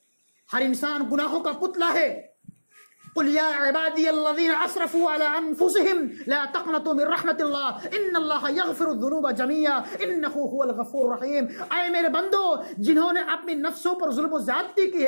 ہر انسان گناہوں کا پتلا ہے۔ قل یا عبادی الذین اسرفوا علی انفسهم لا تقنطوا من رحمت اللہ ان اللہ یغفر الذنوب جميعا انہ هو الغفور الرحیم۔ اے میرے بندو، جنہوں نے اپنی نفسوں پر ظلم و زیادتی کی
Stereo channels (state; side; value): inverted; both; correlation -1.00